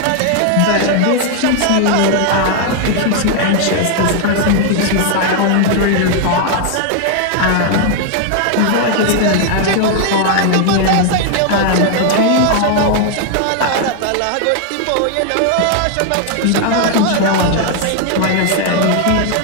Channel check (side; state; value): both; different; correlation 0.00